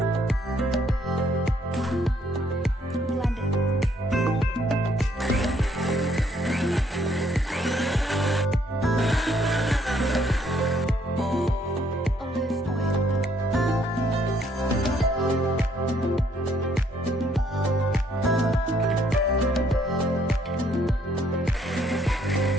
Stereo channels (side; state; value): both; normal; correlation 0.67